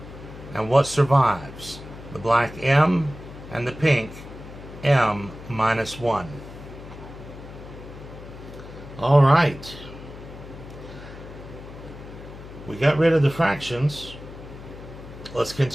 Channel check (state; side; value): noise; left; hum, 15 dB below the sound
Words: and what survives? The black m and the pink m minus 1. All right. We got rid of the fractions. Let's